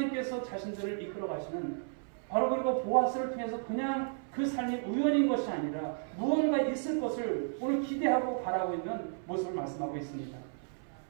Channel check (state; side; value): silent; left; 56 dB below the other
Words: 자신들을 이끌어 가시는 바로 그리고 보아스를 통해서 그냥 그 삶이 우연인 것이 아니라 무언가 있을 것을 오늘 기대하고 바라고 있는 모습을 말씀하고 있습니다.